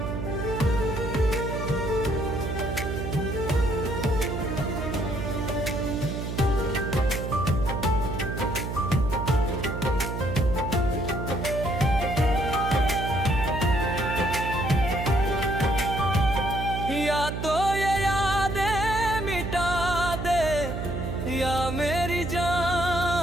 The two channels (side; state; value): right; noise; hum, 4 dB below the sound